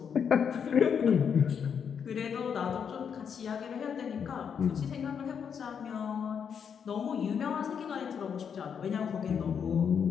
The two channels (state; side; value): quieter; right; 7.2 dB